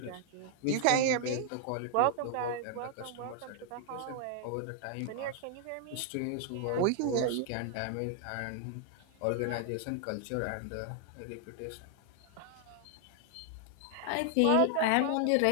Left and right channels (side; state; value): both; different; correlation 0.00